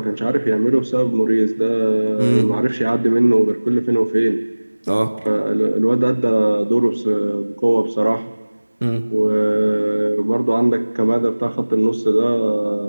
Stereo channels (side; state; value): both; inverted; correlation -1.00